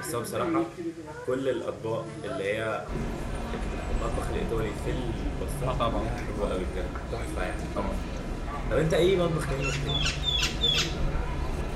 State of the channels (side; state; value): both; identical; correlation 1.00